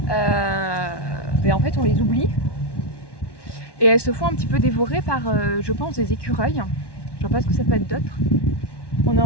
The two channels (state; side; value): late; right; 1.1 ms